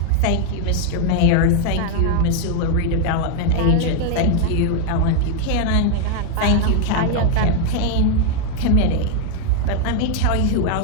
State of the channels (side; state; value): both; different; correlation 0.00